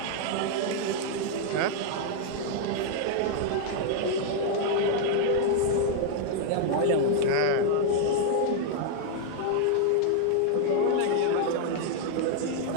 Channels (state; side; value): different; both; correlation 0.00